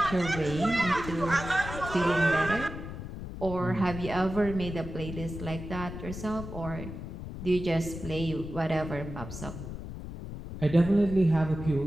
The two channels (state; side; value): noise; left; rumble, 9 dB below the sound